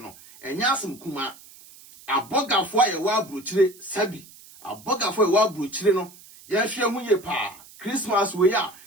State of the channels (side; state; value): right; noise; hiss, 22 dB below the sound